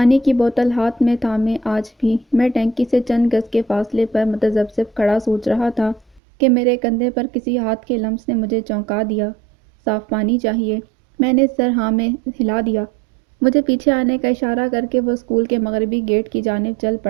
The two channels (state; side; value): drops out; left; at 6.2 s